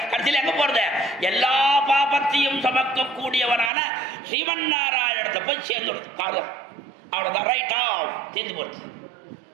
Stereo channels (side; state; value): left; drops out; at 3.7 s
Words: கடைசியில் எங்க போறது? எல்லா பாபத்தையும் சமக்கக்கூடியவனான ஸ்ரீமன் நாராயணத்தை போய் சேர்ந்துடுது காலம். அவ்வளவுதான், ரைட்டா தீர்ந்து போச்சு.